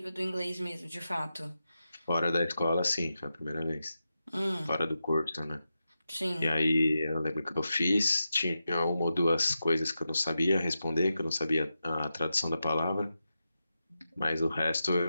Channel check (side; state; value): both; inverted; correlation -0.90